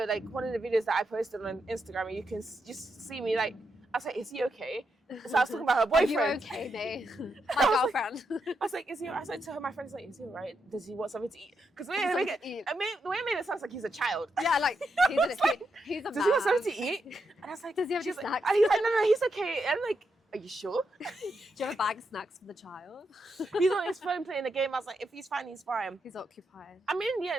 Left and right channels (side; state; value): both; normal; correlation 0.83